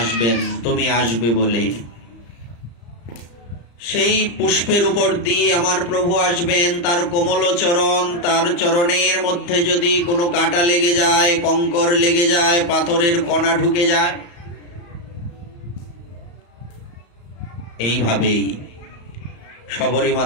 তুমি আসবে বলে। সেই পুষ্পের উপর দিয়ে আমার প্রভু আসবেন, তার কোমল চরণ, তার চরণের মধ্যে যদি কোনো কাঁটা লেগে যায়, কঙ্কর লেগে যায়, পাথরের কণা ঢুকে যায়, এইভাবেই শবরী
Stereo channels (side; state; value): right; late; 34 ms